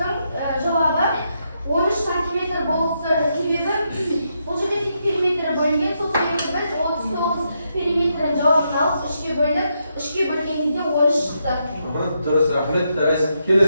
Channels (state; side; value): inverted; both; correlation -0.81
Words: жауабы 13 сантиметр болса себебі бұл жерде тек периметрі бөлінген, сол себепті біз 39 периметрін жауабын алып үшке бөлдік, үшке бөлгенде 13 шықты. Дұрыс, рахмет.